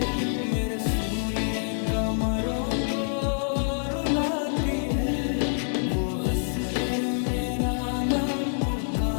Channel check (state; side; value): silent; right; digital silence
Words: मेरे सूने कमरों को रुलाती है। वो हंस कर मेरा नाम